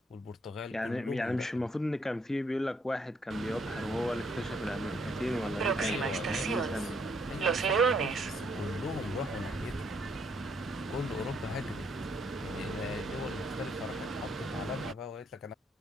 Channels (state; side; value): normal; both; correlation 0.70